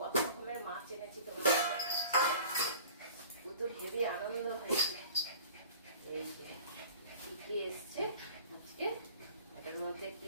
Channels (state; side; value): inverted; both; correlation -0.44